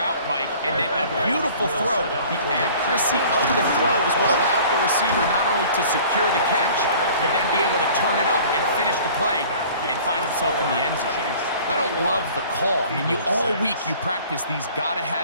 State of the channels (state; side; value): inverted; both; correlation -0.48